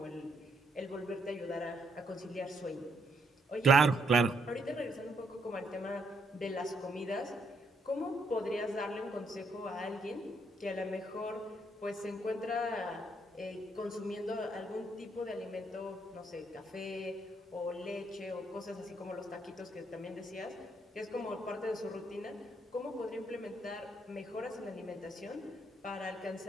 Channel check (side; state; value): both; normal; correlation 0.73